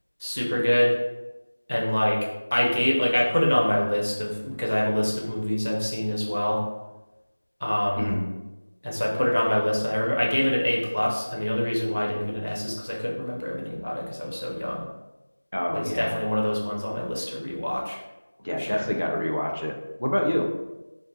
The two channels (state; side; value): inverted; both; correlation -1.00